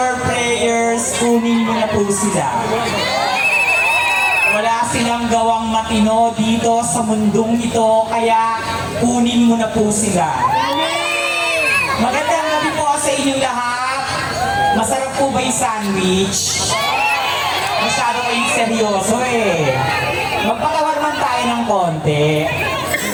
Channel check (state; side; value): identical; both; correlation 1.00